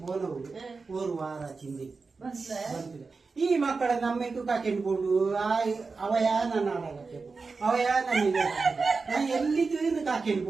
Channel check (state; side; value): quieter; left; 4.4 dB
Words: ಬೋನವು ಓರು ವಾರ ಚಿಂದಿ ಬಂತಿದೆ ಈ ಮಕ್ಕಳ ನಮ್ಮೆಟ್ಟು ಕಾಕೆಂಡ್ಕೊಂಡು ಅವಯ ನನ್ನ ಆಡಾಗತ್ತೆ ಅವಯ ನನಗೆ ನಾ ಎಲ್ಲಿದ್ದು ಇನ್ನು ಕಾಕೆಂಡ್